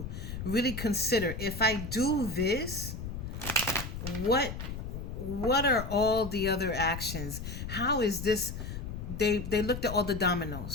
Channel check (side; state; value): left; noise; rumble, 7 dB below the sound